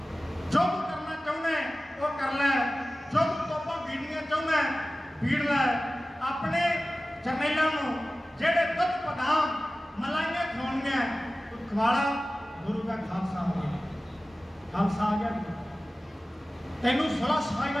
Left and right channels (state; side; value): normal; both; correlation 0.96